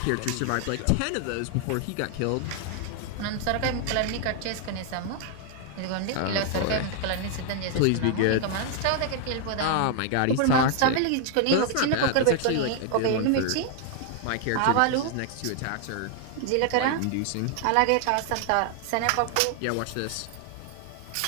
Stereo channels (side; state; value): both; different; correlation 0.00